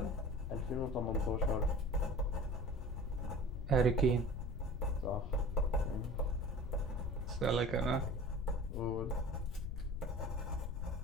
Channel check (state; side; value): noise; left; rumble, 5 dB below the sound